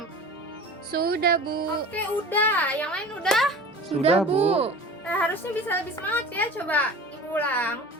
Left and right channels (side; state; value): both; normal; correlation 0.38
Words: Sudah, Bu. Oke, udah. Yang lain udah? Sudah, Bu. Harusnya bisa lebih semangat ya. Coba Ibu ulang.